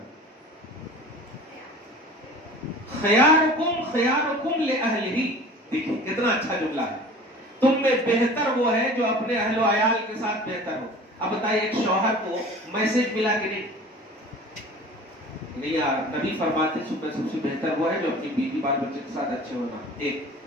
خیارکم خیارکم لأہلہ، دیکھیں کتنا اچھا جملہ ہے. تم میں بہتر وہ ہے جو اپنے اہل و عیال کے ساتھ بہتر ہو. اب بتائیے ایک شوہر کو میسج ملا کہ نہیں یار، نبی فرماتے تم میں سب سے بہتر وہ ہے جو اپنی بیوی بال بچے کے ساتھ اچھے ہونا. ایک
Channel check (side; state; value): both; normal; correlation 0.42